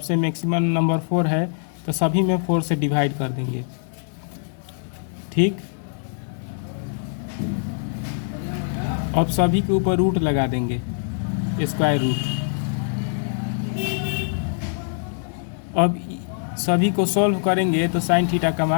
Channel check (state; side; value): silent; right; digital silence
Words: मैक्सिमम नंबर 4 है, तो सभी में 4 से डिवाइड कर देंगे। ठीक, अब सभी के ऊपर रूट लगा देंगे, स्क्वायर रूट। अब सभी को सॉल्व करेंगे तो साइन थीटा का